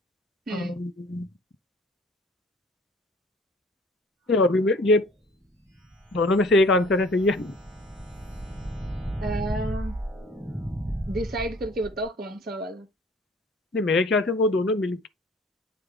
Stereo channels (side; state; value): both; normal; correlation 0.51